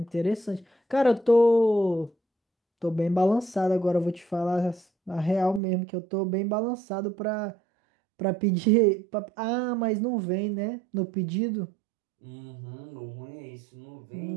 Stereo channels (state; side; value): drops out; left; at 5.6 s